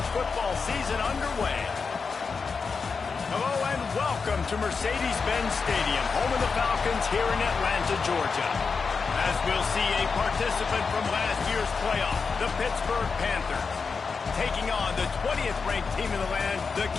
football season underway. Hello and welcome to Mercedes-Benz Stadium, home of the Falcons here in Atlanta, Georgia. As we'll see a participant from last year's playoff, the Pittsburgh Panthers, taking on the 20th ranked team in the land, the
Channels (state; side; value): quieter; right; 5.1 dB